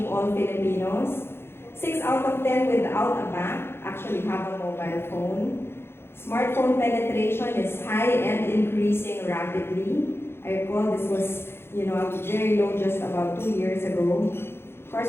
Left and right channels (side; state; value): right; late; 0.11 ms